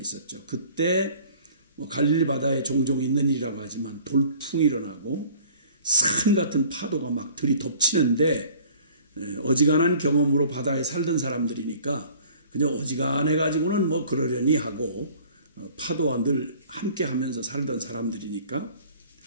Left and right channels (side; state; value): both; inverted; correlation -0.51